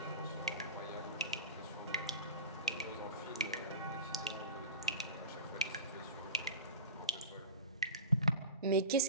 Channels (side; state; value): both; inverted; correlation -0.33